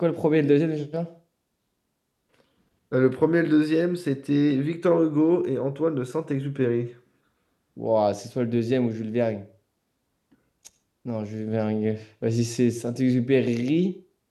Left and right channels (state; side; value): identical; both; correlation 1.00